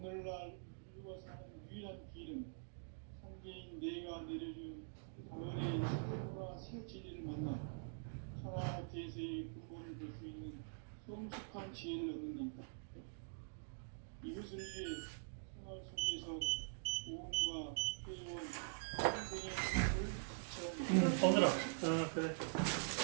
인류가 사는 유일한 길은 상제인 내가 내려준 가을의 새 문화, 새 진리를 만나 천하 대세의 근본을 볼 수 있는 성숙한 지혜를 얻는 데 있다. 이것을 위해 생활 속에서 보험과 회원, 상생의 삶을 실천합니다. 더들어. 그래.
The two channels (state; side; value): silent; left; digital silence